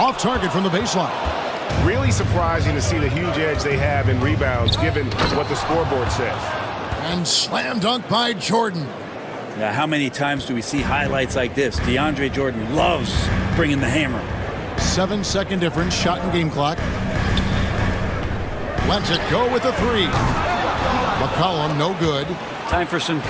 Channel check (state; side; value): identical; both; correlation 1.00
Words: target from the baseline. Really surprising to see the huge edge they have in rebounds given what the scoreboard says. And slam dunk by Jordan. Yeah, how many times do we see highlights like this? DeAndre Jordan loves bringing the hammer. 7-second difference, shot and game clock. Lets it go with a 3. McCollum, no good. Time for some